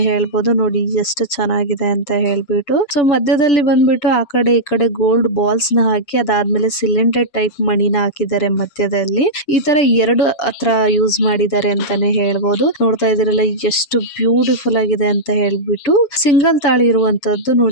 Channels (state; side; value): late; right; 6.9 ms